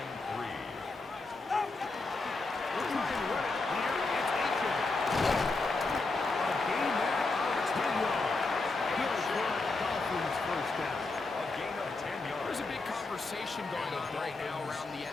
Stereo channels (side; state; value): right; quieter; 3.5 dB